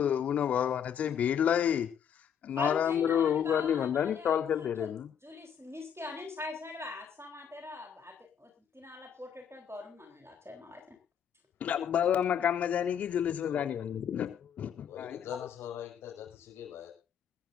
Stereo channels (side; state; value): right; quieter; 8.4 dB